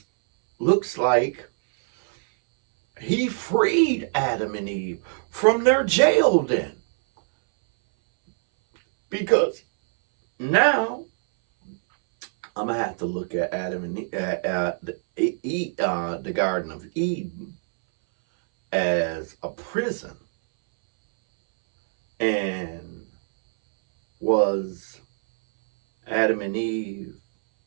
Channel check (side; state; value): left; silent; 63 dB below the other